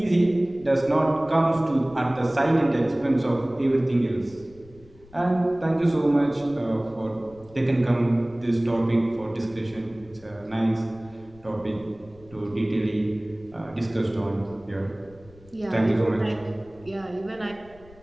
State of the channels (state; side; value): noise; left; rumble, 24 dB below the sound